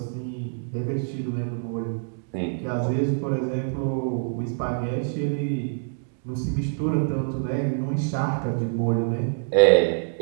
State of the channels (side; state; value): left; silent; digital silence